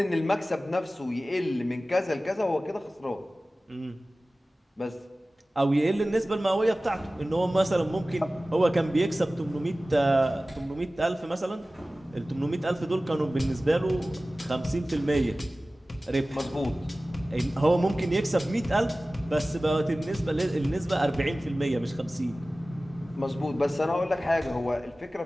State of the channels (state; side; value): normal; both; correlation 0.97